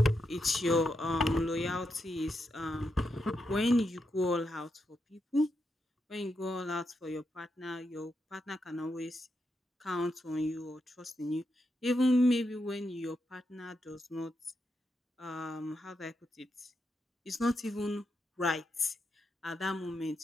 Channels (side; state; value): both; normal; correlation 0.84